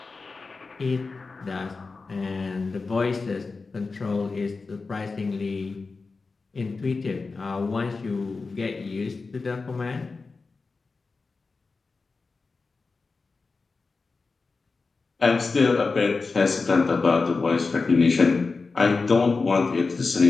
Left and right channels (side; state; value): right; quieter; 4.1 dB